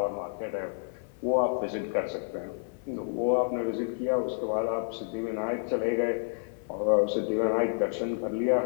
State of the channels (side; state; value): right; silent; 58 dB below the other